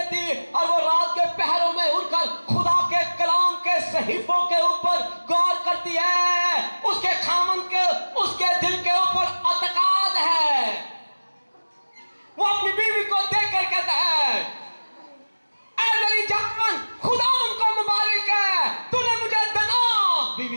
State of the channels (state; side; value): inverted; both; correlation -1.00